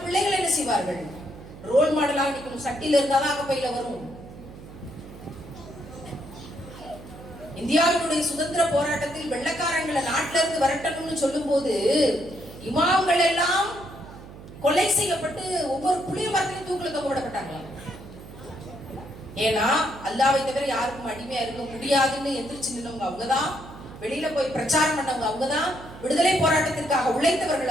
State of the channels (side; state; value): right; noise; hum, 16 dB below the sound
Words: பிள்ளைகள் என்ன செய்வார்கள்? ரோல் மாடலாக நிக்கணும். சட்டியில இருந்தாதான் அகப்பையில வரும். இந்தியாவினுடைய சுதந்திர போராட்டத்தில் வெள்ளக்காரங்களை நாட்டில இருந்து வரட்டணும்னு சொல்லும் போது இமாம்கள் எல்லாம் கொலை செய்யப்பட்டு ஒவ்வொரு புளிய மரத்திலும் தூக்கில தொங்கப்பட்டாங்களாம். ஏன்னா அல்லாஹ்வை தவிர யாருக்கும் அடிமையா இருக்க முடியாதுன்னு எந்திரிச்சு நின்னவங்க அவங்கதான், வெளியில போய் பிரச்சாரம் பண்ணவங்க அவங்கதான், விடுதலை போராட்டத்திற்காக